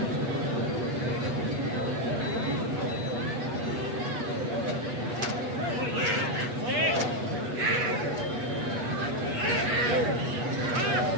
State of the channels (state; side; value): late; left; 8.2 ms